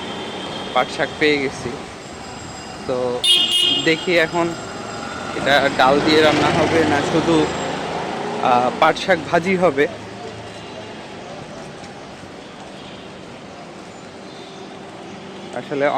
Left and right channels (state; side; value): identical; both; correlation 1.00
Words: পাট শাক পেয়ে গেছি। তো দেখি এখন এটা ডাল দিয়ে রান্না হবে না শুধু পাট শাক ভাজি হবে। আসলে